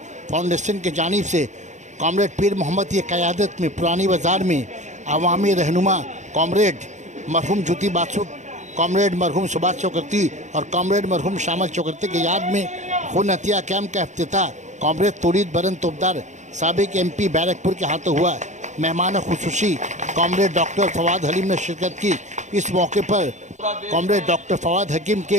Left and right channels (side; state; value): left; late; 0.35 ms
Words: फाउंडेशन की जानिब से कॉमरेड पीर मोहम्मद की क़यादत में पुरानी बाज़ार में अवामी रहनुमा कॉमरेड मरहूम ज्योति बासु, कॉमरेड मरहूम सुभाष चक्रवर्ती और कॉमरेड मरहूम शामल चक्रवर्ती की याद में खून हत्या कैंप का इफ्तिताह कॉमरेड तोरीद बरन तोपदार साबिक MP बैरकपुर के हाथों हुआ। मेहमान खुसूसी कॉमरेड डॉक्टर फवाद हलीम ने शिरकत की। इस मौके पर कॉमरेड डॉक्टर फवाद हकीम